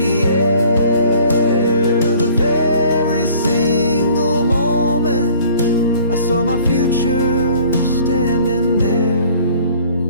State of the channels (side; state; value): both; inverted; correlation -0.53